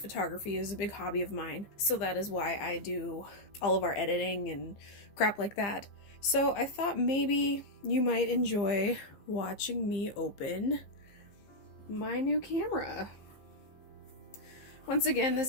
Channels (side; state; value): right; late; 15 ms